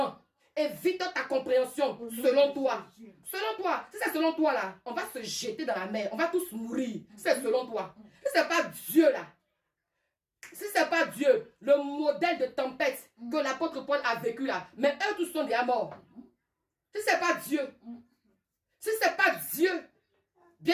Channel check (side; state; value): both; identical; correlation 1.00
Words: Évite ta compréhension selon toi. Selon toi. Si c'est selon toi là, on va se jeter dans la mer. On va tous mourir. C'est selon toi. Si ce n'est pas Dieu là. Si ce n'est pas Dieu, le modèle de tempête que l'apôtre Paul a vécu là, mais eux tous sont déjà morts. Si ce n'est pas Dieu, si ce n'est pas Dieu,